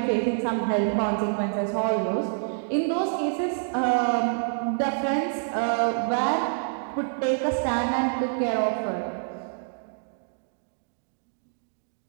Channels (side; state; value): left; silent; digital silence